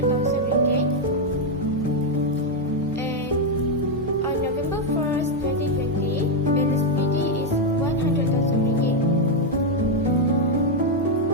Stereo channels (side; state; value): both; normal; correlation 0.02